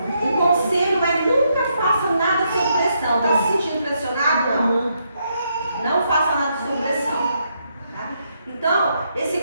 o conselho é nunca faça nada sob pressão. Está se sentindo pressionado? Não. Não faça nada sob pressão. Tá? Então, esse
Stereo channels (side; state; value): both; inverted; correlation -0.78